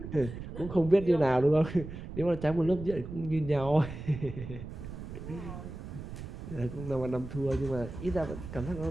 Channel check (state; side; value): noise; right; rumble, 10 dB below the sound